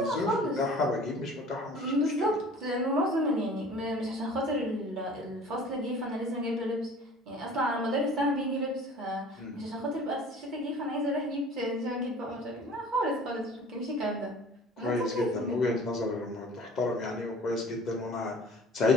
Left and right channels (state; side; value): normal; both; correlation 0.46